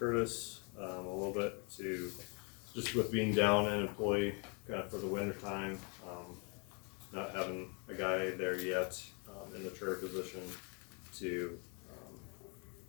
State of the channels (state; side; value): quieter; right; 34.3 dB